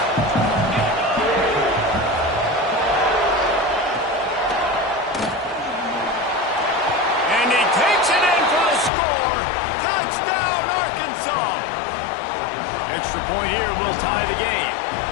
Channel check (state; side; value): drops out; right; at 8.9 s